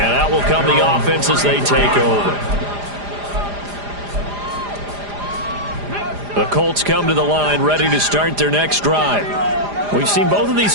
that will come the offense as they take over. The Colts come to the line ready to start their next drive. We've seen both of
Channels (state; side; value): late; left; 4.9 ms